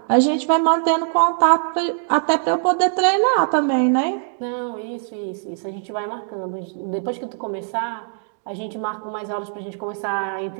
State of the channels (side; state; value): left; silent; digital silence